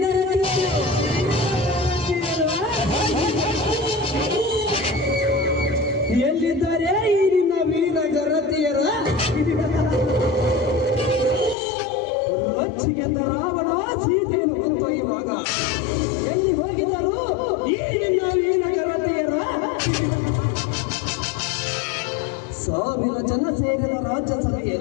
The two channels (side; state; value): right; drops out; at 11.6 s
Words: ಗರತಿ. ಎಲ್ಲಿದ್ದಾರೆ ಈ ನಿನ್ನ ವೀರ ಗರತಿಯರ? ರೊಚ್ಚಿಗೆದ್ದ ರಾವಣ ಸೀತೆಯನ್ನು ಕೊಂದೊಯ್ಯುವಾಗ ಎಲ್ಲಿ ಹೋಗಿದ್ದರು ಈ ನಿನ್ನ ವೀರ ಗರತಿಯರ? ಸಾವಿರ ಜನ ಸೇರಿದ